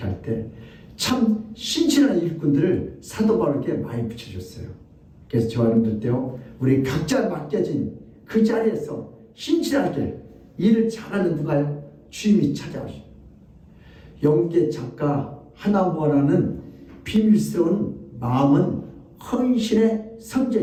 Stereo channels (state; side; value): identical; both; correlation 1.00